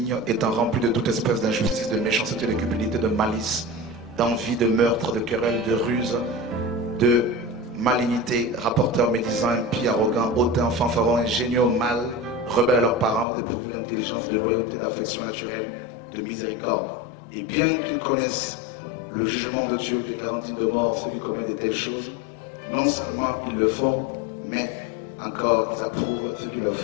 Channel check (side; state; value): right; drops out; at 13.2 s